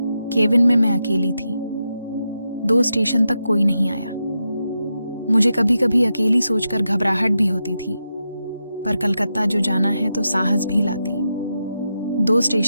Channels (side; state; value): both; inverted; correlation -0.87